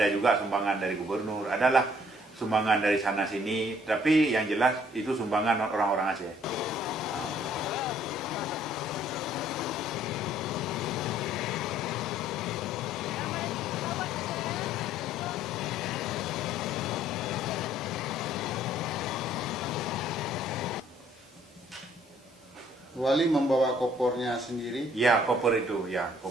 juga sumbangan dari gubernur, adalah sumbangan dari sana sini, tapi yang jelas itu sumbangan orang-orang Aceh. Wali membawa kopornya sendiri? Ya, koper itu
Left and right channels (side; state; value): both; normal; correlation 0.61